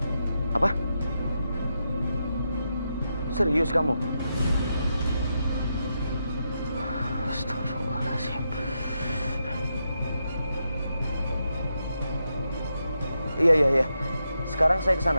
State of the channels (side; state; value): both; inverted; correlation -0.85